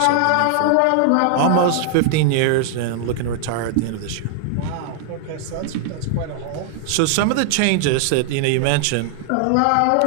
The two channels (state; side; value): different; both; correlation 0.00